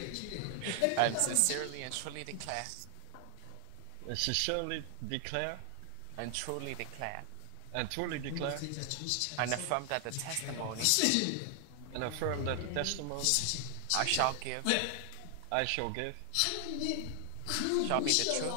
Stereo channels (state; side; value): different; both; correlation 0.00